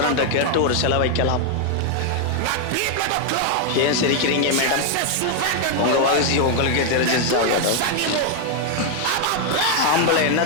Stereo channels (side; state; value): both; different; correlation 0.00